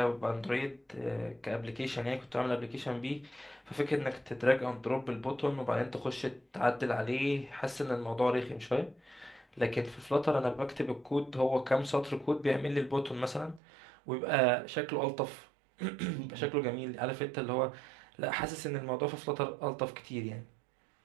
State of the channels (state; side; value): drops out; left; at 13.6 s